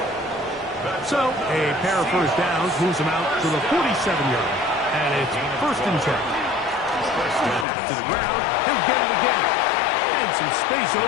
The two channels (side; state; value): right; drops out; at 7.7 s